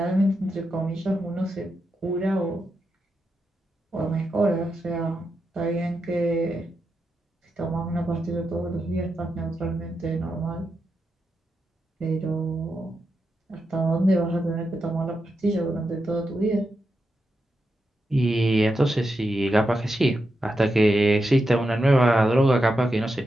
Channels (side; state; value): both; normal; correlation 0.87